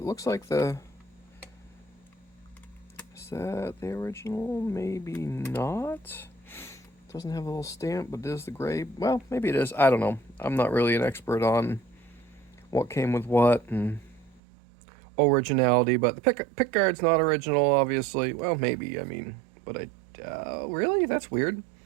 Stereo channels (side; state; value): left; drops out; at 14.4 s